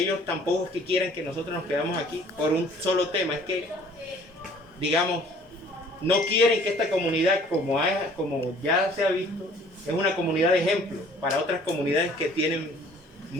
tampoco es que quieran que nosotros nos quedamos aquí por un solo tema. Es que, digamos, no quieren que esta comunidad, como ya se ha visto, es una comunidad de ejemplo para otras comunidades que tienen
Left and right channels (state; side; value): normal; both; correlation 0.54